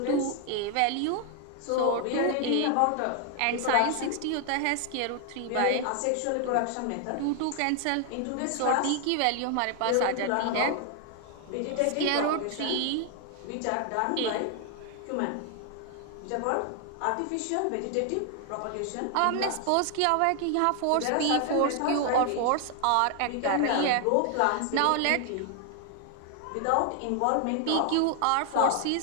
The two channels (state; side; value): different; both; correlation 0.00